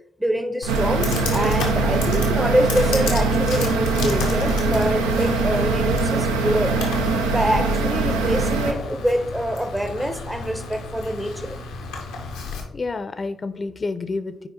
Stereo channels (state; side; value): normal; both; correlation 0.67